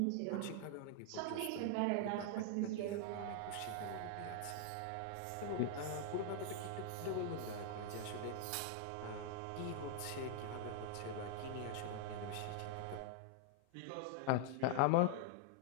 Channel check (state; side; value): different; both; correlation 0.00